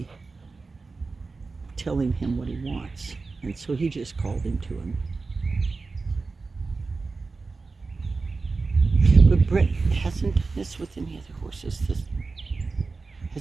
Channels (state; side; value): quieter; left; 4.0 dB